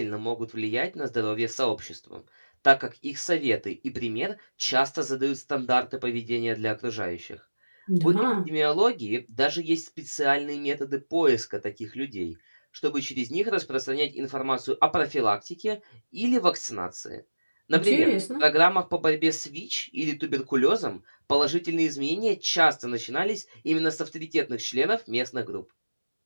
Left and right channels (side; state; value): both; inverted; correlation -1.00